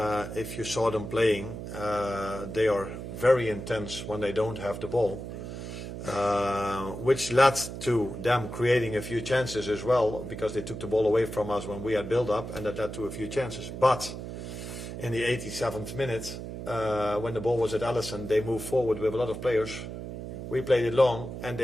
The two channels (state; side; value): noise; right; hum, 8 dB below the sound